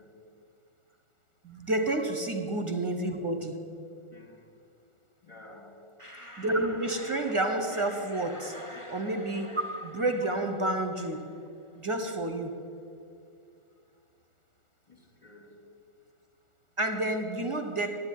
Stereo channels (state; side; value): late; left; 1.4 ms